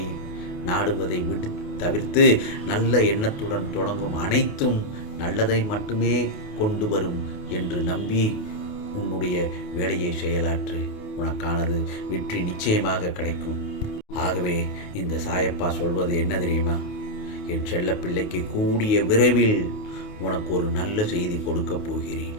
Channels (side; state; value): right; late; 28 ms